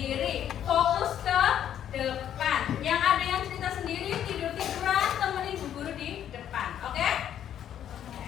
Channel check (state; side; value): quieter; right; 10.2 dB